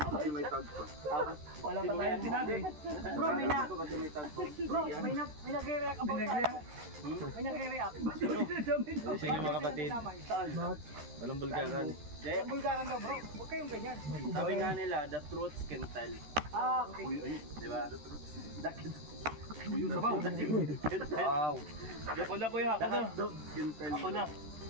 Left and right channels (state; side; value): late; left; 13 ms